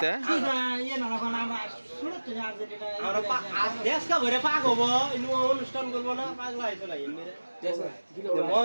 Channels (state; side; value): inverted; both; correlation -1.00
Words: ইয়া না কোন আমরা শুনে তো আর্জেন্টিনা আমরা দেশ কা ভরে পাক হবো ইনু অনুষ্ঠান করব না পাগলা হইতো না এমরে